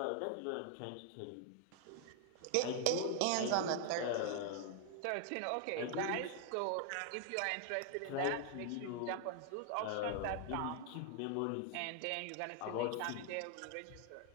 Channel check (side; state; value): both; different; correlation 0.00